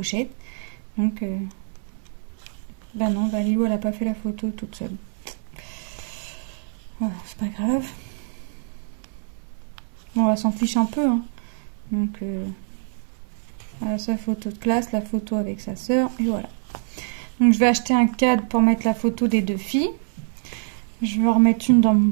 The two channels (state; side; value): silent; left; 62 dB below the other